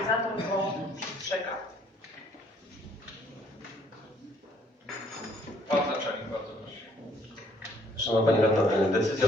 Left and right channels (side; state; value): both; normal; correlation 0.64